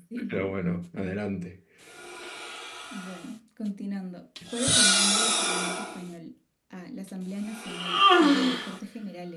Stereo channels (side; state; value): both; identical; correlation 1.00